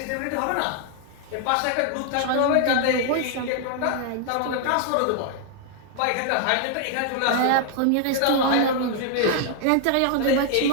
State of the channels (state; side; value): different; both; correlation 0.00